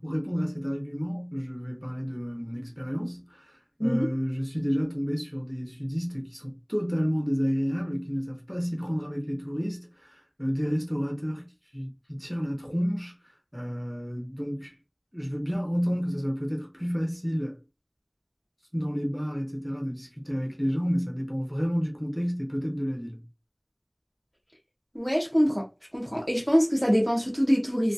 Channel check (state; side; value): identical; both; correlation 1.00